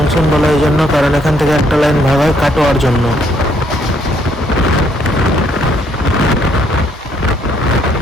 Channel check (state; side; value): normal; both; correlation 0.69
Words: বলা এই জন্য কারণ এখান থেকে একটা লাইন ভাগ হয় কাটোয়ার জন্য।